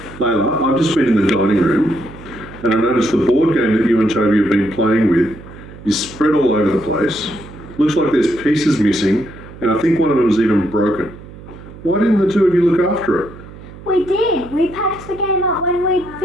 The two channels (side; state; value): right; noise; hum, 17 dB below the sound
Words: Layla, I've just been in the dining room and I noticed the board game that you and Toby have been playing with is spread all over the place. Looks like there's pieces missing, and I think one of them's even broken. Why didn't the two of you look after it? We did. We packed the game up when we